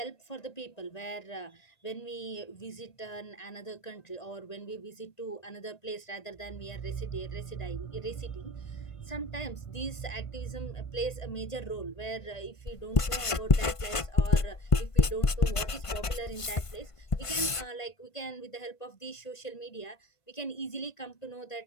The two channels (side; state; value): right; late; 1.5 ms